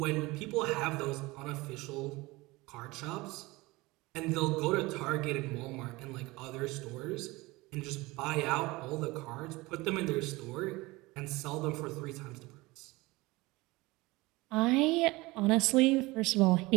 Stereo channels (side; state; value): left; quieter; 21.8 dB